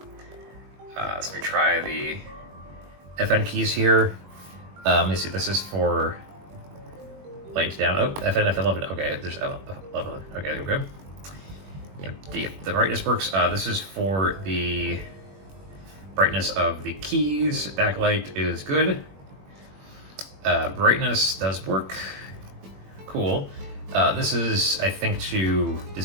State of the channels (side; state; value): left; late; 21 ms